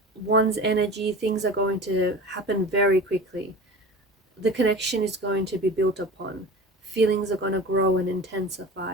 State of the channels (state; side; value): normal; both; correlation 0.35